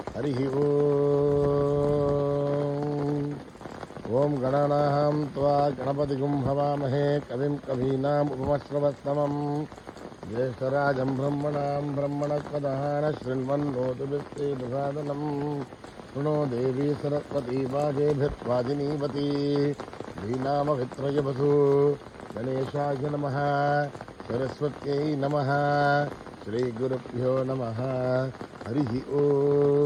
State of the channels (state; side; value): identical; both; correlation 1.00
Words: హరి ఓం. ఓం గణానాం త్వా గణపతిగుం హవామహే కవిం కవీనాం ఉపమశ్రవస్తమం జ్యేష్ఠరాజం బ్రహ్మణాం బ్రహ్మణస్పదః శృణ్వన్నోతిభిశ్రీదసాదనం శృణో దేవీ సరస్వతీ వాజేభిర్వాజినీవతి శ్రీనామవిత్రయవసు గణేశాయ నమః. సరస్వత్యై నమః. శ్రీ గురుభ్యో నమః. హరి ఓం.